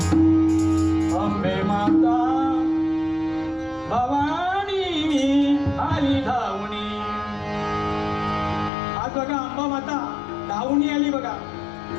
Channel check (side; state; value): right; drops out; at 8.7 s